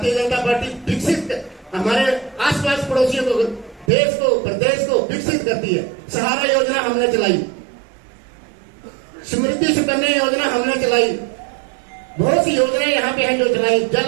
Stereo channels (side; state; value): left; drops out; at 3.9 s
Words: जनता पार्टी विकसित, हमारे आसपास पड़ोसियों को, देश को, प्रदेश को विकसित करती है। सहारा योजना हमने चलाई, समृद्धि सुकन्या योजना हमने चलाई, बहुत सी योजनाएं यहाँ पे हैं जो चलाई।